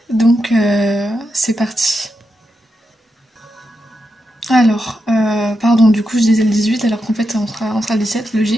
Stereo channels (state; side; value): normal; both; correlation 0.86